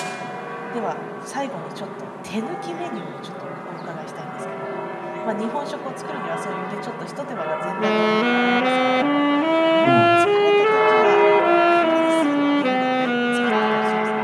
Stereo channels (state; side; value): identical; both; correlation 1.00